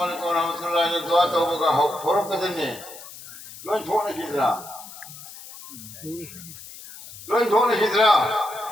वालेकुम व रहमतुल्लाह ने दुआ तो होगा थोड़ा कदर ने लोग छोड़ने की तरह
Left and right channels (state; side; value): noise; left; hiss, 15 dB below the sound